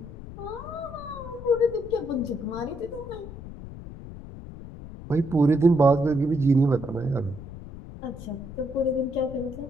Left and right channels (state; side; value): noise; left; rumble, 13 dB below the sound